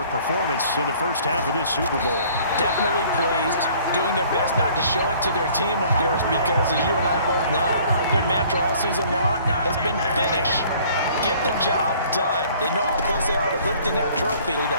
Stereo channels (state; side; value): inverted; both; correlation -0.54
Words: performance in the first half of this Super Bowl. Definitely pleased, doing their best not to show it to their team, of course, because as you and I both know, their mantra all season long has been finish. Get the job done. They know how close they are to lifting that trophy.